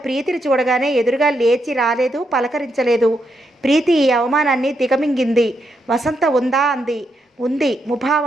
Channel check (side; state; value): both; normal; correlation 0.81